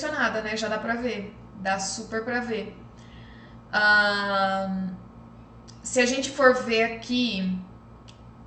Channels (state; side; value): identical; both; correlation 1.00